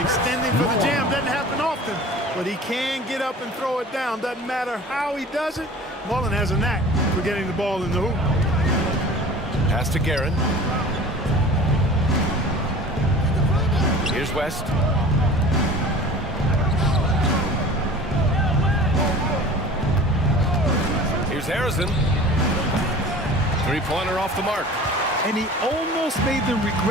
for the jam doesn't happen often, but he can get up and throw it down. Doesn't matter how he does it. Mullen has a knack for getting the ball in the hoop. Pass to Guerin. Here's West. Here's Harrison. Three-pointer off the mark. And he almost made them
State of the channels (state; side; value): normal; both; correlation 0.41